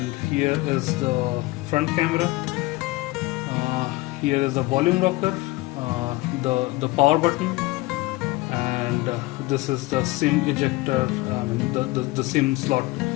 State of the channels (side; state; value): right; quieter; 20.8 dB